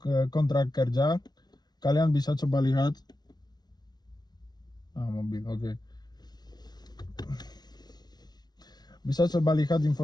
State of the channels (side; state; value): right; late; 0.19 ms